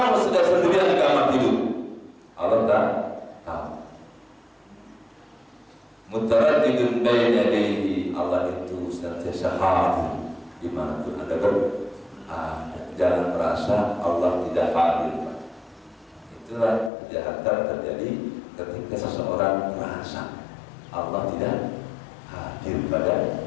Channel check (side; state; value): right; drops out; at 16.9 s